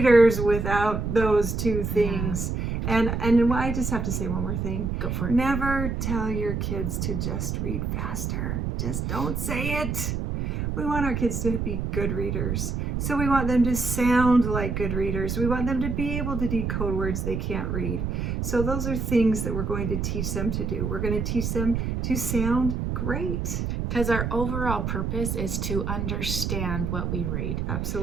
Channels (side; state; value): right; noise; rumble, 2 dB below the sound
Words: without those two things. And I just have to say one more thing. Go for it. Never tell your kids to just read faster. Just don't say it. We want our kids to be good readers. So we want them to sound like good readers. We want them to be able to decode words they can't read. So those are things that we're going to teach them to do. We're going to teach them to sound great. Because our overall purpose is to understand what we read.